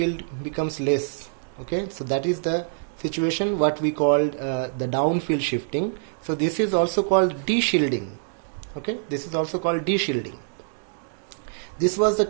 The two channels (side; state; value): left; silent; digital silence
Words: becomes less. Okay. So that is the situation what we called the downfield shifting. So this is also called deshielding. Okay, this is also called deshielding. This was the